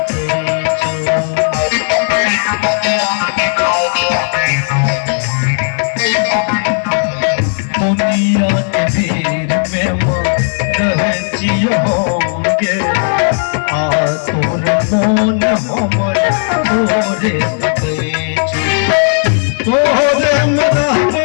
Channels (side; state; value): right; silent; digital silence